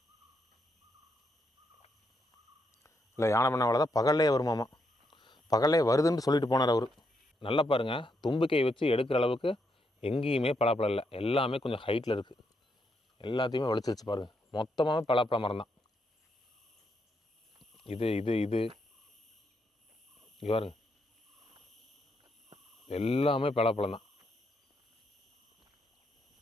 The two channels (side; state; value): both; normal; correlation 0.79